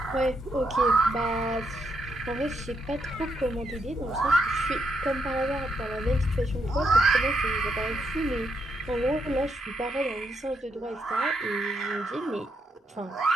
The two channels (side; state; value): both; normal; correlation 0.79